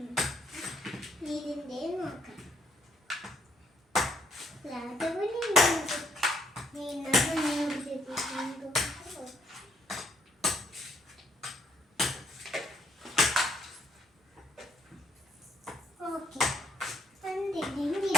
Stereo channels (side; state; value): both; normal; correlation 0.71